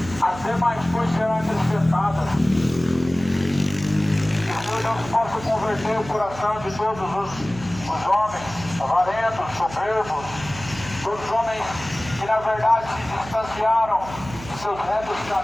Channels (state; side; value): noise; right; hum, 14 dB below the sound